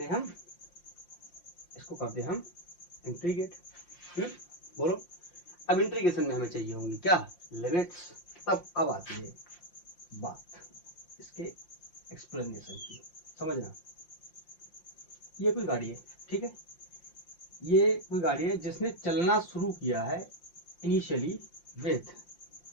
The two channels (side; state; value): right; late; 5.7 ms